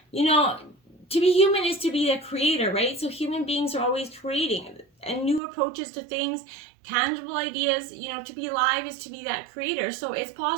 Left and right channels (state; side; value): drops out; left; at 5.4 s